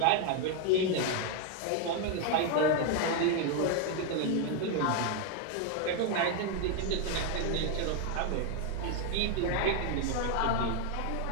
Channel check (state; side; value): different; both; correlation 0.01